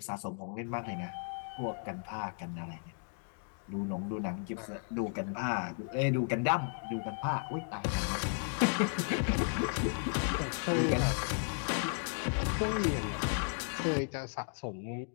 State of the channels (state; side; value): silent; right; 55 dB below the other